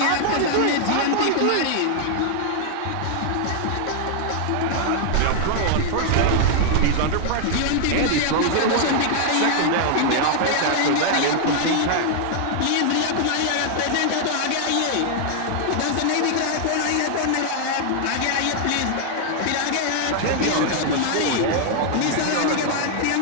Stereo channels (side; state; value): both; different; correlation 0.00